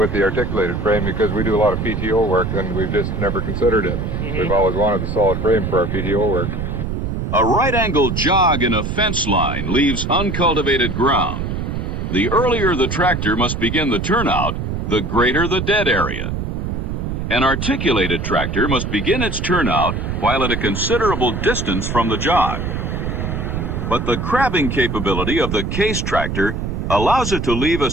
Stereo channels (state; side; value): noise; right; rumble, 3 dB below the sound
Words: articulated frame because we do a lot of PTO work and we've just never considered it. We've always wanted the solid frame for our PTO work. A right-angle jog in a fence line leaves uncultivated ground. The earlier the tractor must begin the turnout, the greater the dead area. An articulated tractor must begin its turnout while at a considerable distance from the jog. But the crabbing capability of the Case tractor allows it to leave a